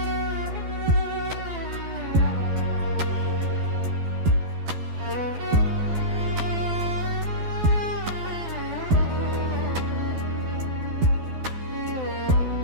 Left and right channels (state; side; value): late; left; 12 ms